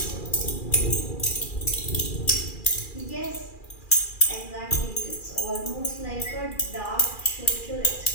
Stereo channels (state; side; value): late; right; 2.4 ms